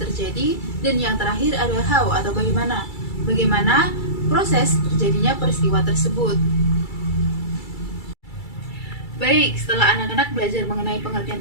Dan yang terakhir ada how atau bagaimana proses terjadinya peristiwa tersebut. Baik, setelah anak-anak belajar mengenai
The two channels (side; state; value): right; late; 2.3 ms